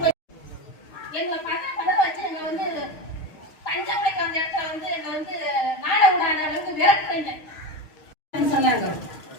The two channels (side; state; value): right; late; 6.5 ms